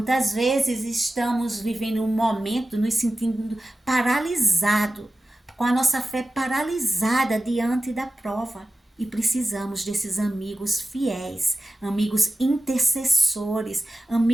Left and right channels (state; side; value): normal; both; correlation 0.94